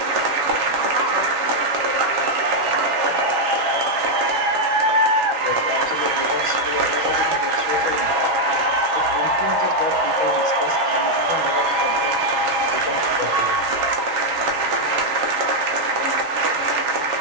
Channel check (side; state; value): left; late; 7.2 ms